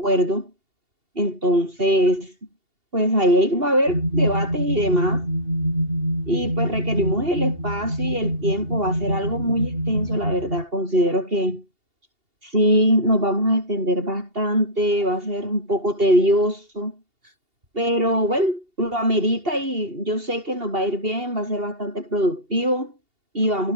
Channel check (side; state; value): left; late; 2.8 ms